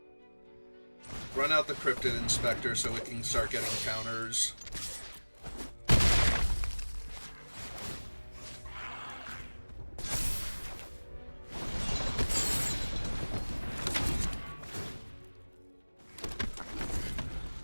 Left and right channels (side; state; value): both; inverted; correlation -1.00